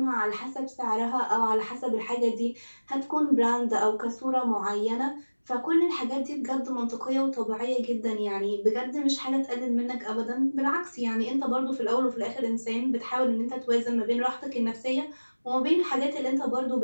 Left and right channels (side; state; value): both; inverted; correlation -1.00